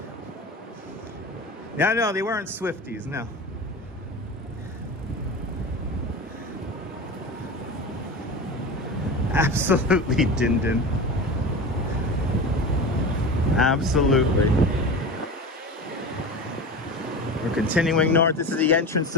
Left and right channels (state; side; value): normal; both; correlation 0.29